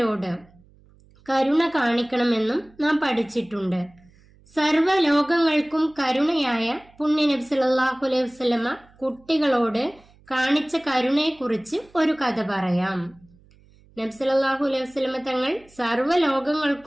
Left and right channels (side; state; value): right; noise; hum, 29 dB below the sound